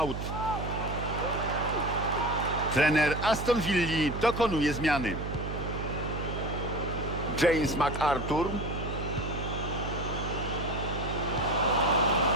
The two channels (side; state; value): right; noise; hum, 5 dB below the sound